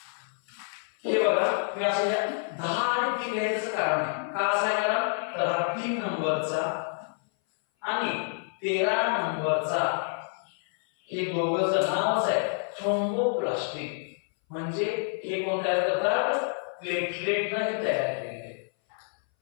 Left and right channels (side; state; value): right; silent; 59 dB below the other